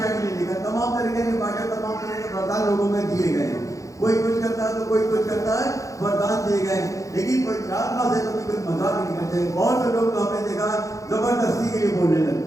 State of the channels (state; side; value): late; right; 0.16 ms